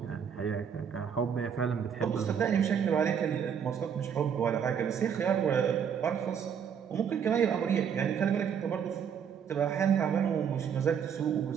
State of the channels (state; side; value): quieter; left; 7.7 dB